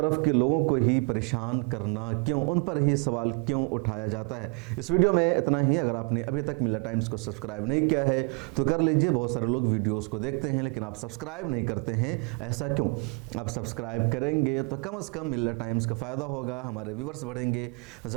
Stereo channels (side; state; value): left; quieter; 35.1 dB